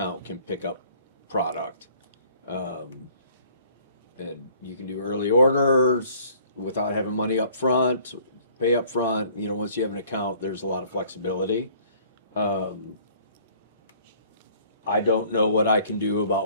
can pick up product. And you can do early orders without having money up front, pay up front. You know, once you have an account, there's a lot of flexibility. I don't know what I can do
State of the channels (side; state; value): both; inverted; correlation -0.57